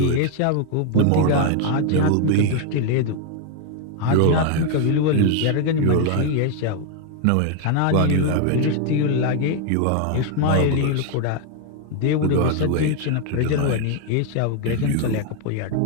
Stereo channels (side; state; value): both; different; correlation 0.01